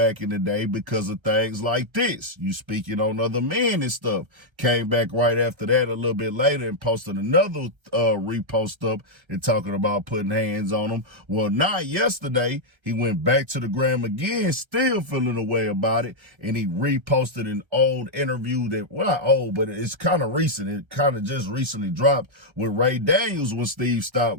in the day, because of things like this. You speaking on other men and stuff. Came back right after that a little bit later and posted another repost up and talking about putting hands on him. Well, not yesterday, he went back to the gram again, still feeling a way about it, and he reposted an old interview that, well, not old, but it's kind of recent. It kind of just recently dropped with Ray Daniels when Steve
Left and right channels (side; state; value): left; late; 1.3 ms